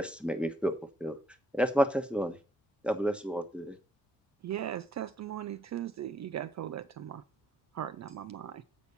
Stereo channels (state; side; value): normal; both; correlation 0.70